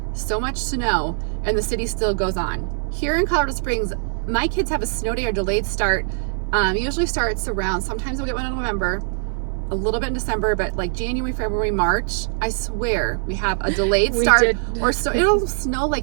so much snow and the city still goes on. Here in Colorado Springs, my kids have a snow day or delayed start. Usually starts around, sometimes we'll get one in November, a little bit in December, but like January, February, March, I swear we have a delayed start, or so it'll snow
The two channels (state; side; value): silent; left; 55 dB below the other